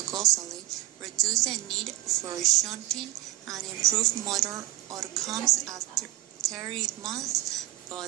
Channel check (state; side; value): quieter; left; 17.3 dB